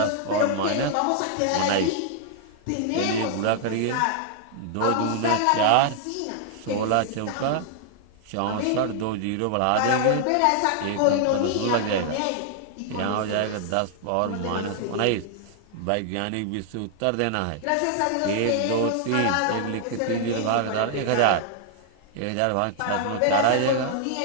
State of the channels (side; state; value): both; different; correlation -0.01